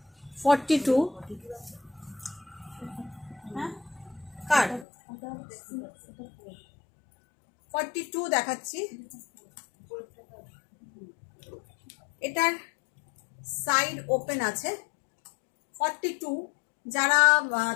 42 হ্যাঁ কার 42 দেখাচ্ছি। এটার সাইড ওপেন আছে। 42 যারা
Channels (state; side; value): drops out; right; at 4.9 s